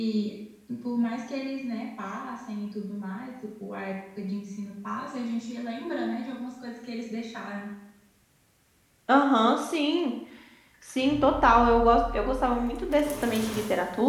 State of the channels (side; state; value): both; identical; correlation 1.00